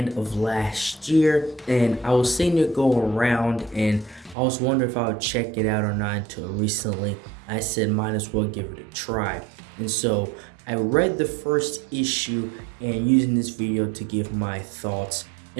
of last year and I was seeing it go around and I was wondering if I would check it out or not until recently. I said might as well give it a try. And so I read the first issue and using this video to give my thoughts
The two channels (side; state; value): left; drops out; at 4.4 s